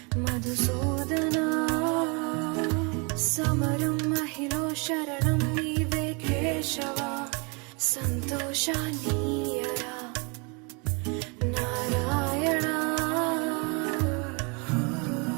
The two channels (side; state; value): left; quieter; 32.4 dB